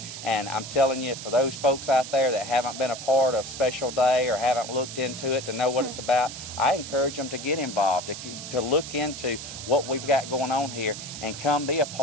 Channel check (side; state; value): right; noise; hiss, 10 dB below the sound